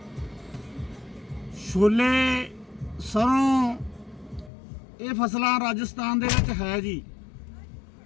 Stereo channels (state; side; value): drops out; right; at 4.5 s